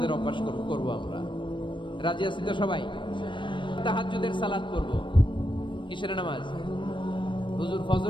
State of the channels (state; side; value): late; right; 0.24 ms